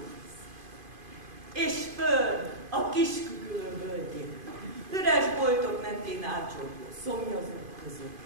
És föl a Kiskügölő völgyén, üres boltok mentén átcsorgó szomjazók között,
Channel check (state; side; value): late; left; 2.5 ms